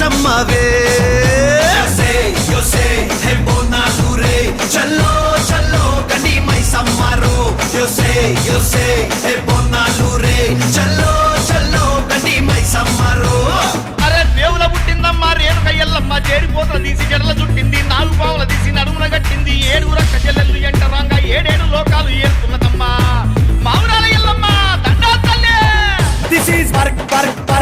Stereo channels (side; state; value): both; identical; correlation 1.00